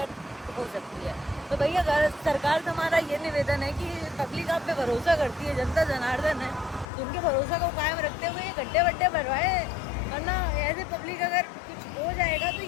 हो सकती है। तो भैया सरकार से हमारा ये निवेदन है कि पब्लिक आप पे भरोसा करती है, जनता जनार्दन है, तो उनके भरोसा को कायम रखते हुए ये गड्ढे वड्ढे भरवाए। वरना ऐसे पब्लिक अगर कुछ हो जाएगा तो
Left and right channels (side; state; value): right; drops out; at 6.9 s